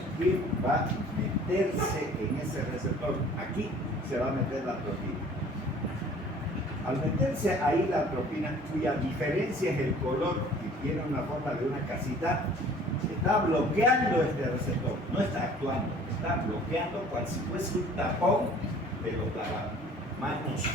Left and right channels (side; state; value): both; normal; correlation 0.51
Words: ¿quién va a meterse en ese receptor? Aquí se va a meter la atropina. Al meterse ahí la atropina, cuya diferencia es el color, y tiene una forma de una casita, está bloqueando este receptor, no está actuando, está bloqueando cual si fuese un tapón de los lavamanos,